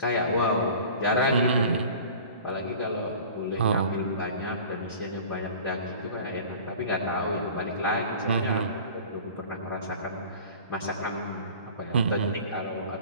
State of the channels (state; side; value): inverted; both; correlation -0.42